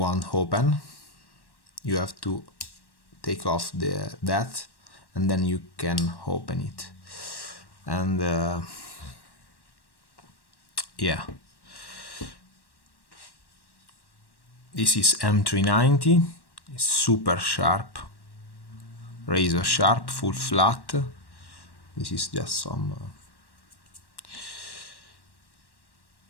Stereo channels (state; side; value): late; right; 1.1 ms